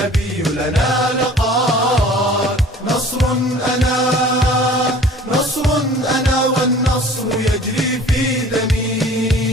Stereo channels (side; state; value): both; normal; correlation 0.47